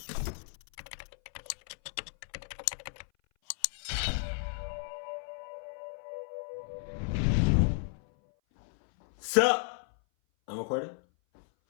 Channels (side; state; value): right; silent; 56 dB below the other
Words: Sup? I'm recording.